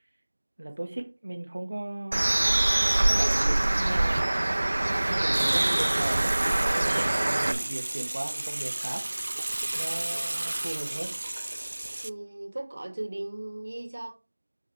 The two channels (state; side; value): inverted; both; correlation -1.00